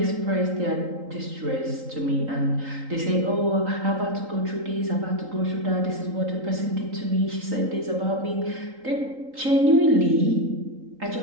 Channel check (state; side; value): late; left; 3.8 ms